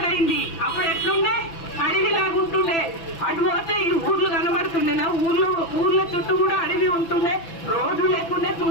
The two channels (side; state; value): right; late; 6.0 ms